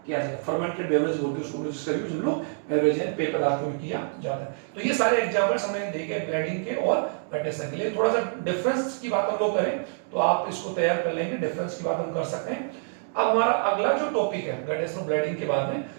किया जाता है, फर्मेंटेड बेवरेज बोलते हैं उसको, जिसका यूज हम लोग बेवरेज एंड पेय पदार्थों में किया जाता है। तो ये सारे एग्जांपल्स हमने देखे ब्लेडिंग के और गटेशन के लिए। थोड़ा सा डिफरेंस की बात हम लोग करें तो आप इसको तैयार कर लेंगे, डिफरेंस की बात हम कर सकते हैं। अब हमारा अगला जो टॉपिक है गटेशन ब्लेडिंग के बाद में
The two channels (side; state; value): left; silent; digital silence